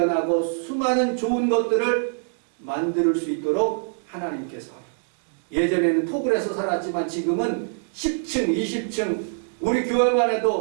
수많은 좋은 것들을 만들 수 있도록 하나님께서 예전에는 토굴에서 살았지만 지금은 10층, 20층 우리 교회만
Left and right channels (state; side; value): silent; left; digital silence